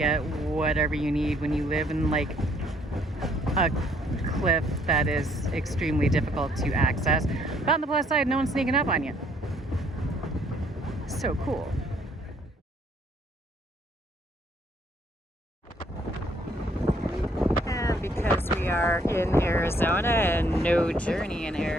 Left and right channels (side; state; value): both; normal; correlation 0.66